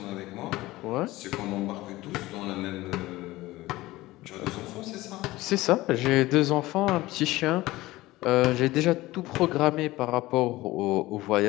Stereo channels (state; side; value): quieter; right; 18.3 dB